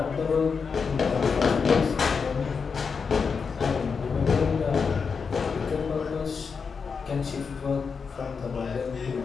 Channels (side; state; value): right; quieter; 5.6 dB